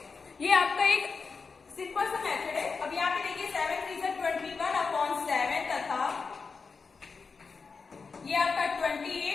ये आपका एक सिंपल सा मेथड है। अब यहाँ पे देखिए 7 × 3 = 21/7 तथा ये आपका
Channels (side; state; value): right; quieter; 4.8 dB